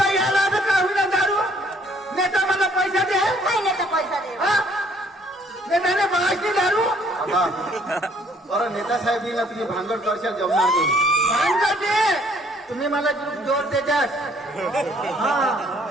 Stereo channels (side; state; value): both; normal; correlation 0.62